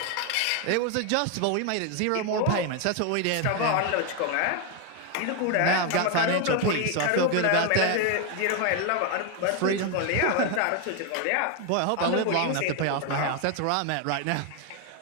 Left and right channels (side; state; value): both; different; correlation 0.01